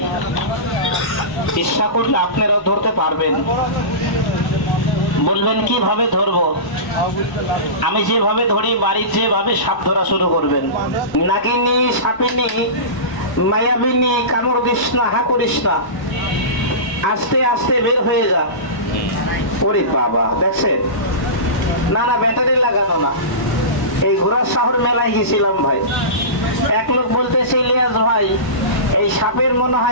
ইচ্ছা করলে আপনারাও ধরতে পারবেন। বলবেন কিভাবে ধরবো? আমি যেভাবে ধরি, বাড়ির যেভাবে সাপ ধরা শুরু করবেন। নাগিনী, সাপিনী, মায়াবিনী, কামড় দিস না, হা করিস না, আস্তে আস্তে বের হয়ে যা। ওরে বাবা, দেখছেন? না না, ব্যাটারি লাগানো না। এই ঘোড়ার শহর মেলায় গেছিলাম ভাই, এক লোক বলতেছে, ইলিয়াস ভাই এই সাপের মনে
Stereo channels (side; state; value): right; late; 1.0 ms